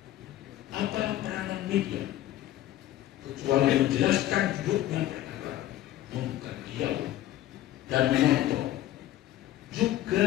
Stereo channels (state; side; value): quieter; right; 13.8 dB